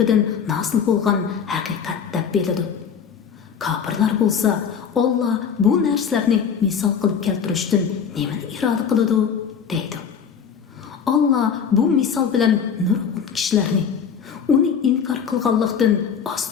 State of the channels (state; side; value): quieter; right; 7.1 dB